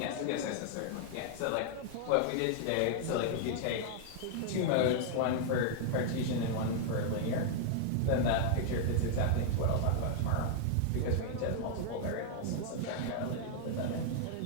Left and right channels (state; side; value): different; both; correlation -0.01